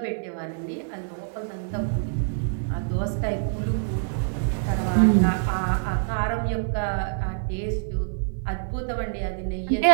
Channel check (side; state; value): left; silent; digital silence